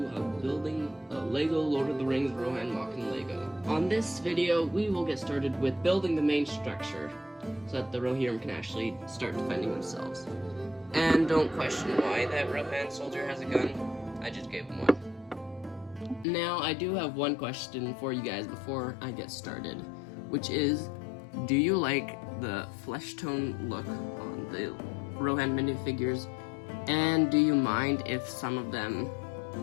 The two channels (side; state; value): right; drops out; at 16.2 s